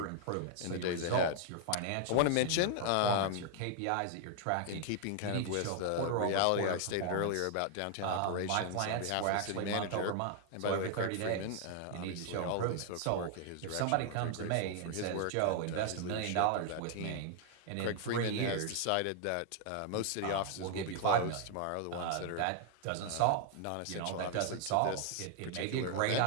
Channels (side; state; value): both; different; correlation 0.00